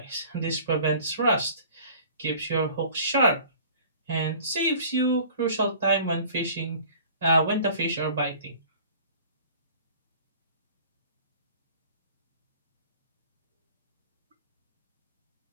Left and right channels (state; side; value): inverted; both; correlation -0.47